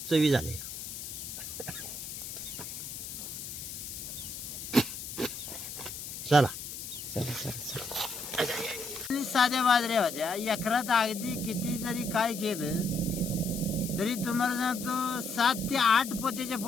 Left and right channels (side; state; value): left; noise; hiss, 8 dB below the sound